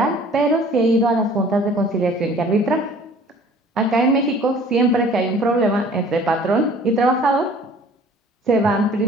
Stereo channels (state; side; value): normal; both; correlation 0.50